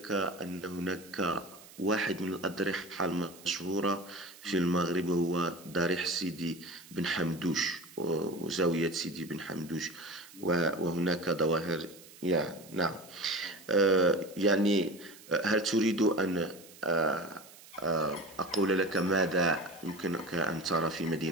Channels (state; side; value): noise; right; hiss, 20 dB below the sound